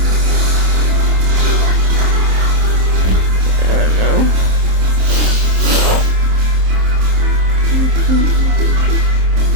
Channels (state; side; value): late; left; 27 ms